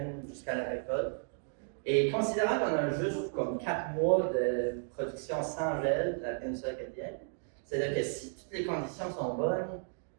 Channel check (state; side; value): silent; left; digital silence